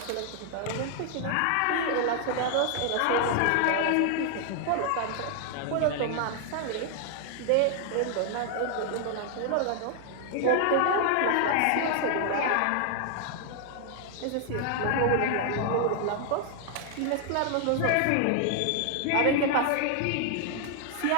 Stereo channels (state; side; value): different; both; correlation 0.00